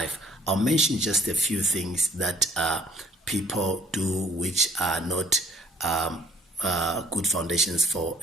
I'll mention just a few things that people do which are not good foundations for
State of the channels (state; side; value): normal; both; correlation 0.59